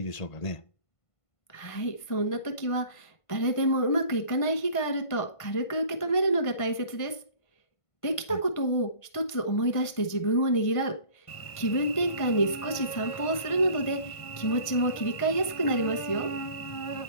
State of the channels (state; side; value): late; right; 1.5 ms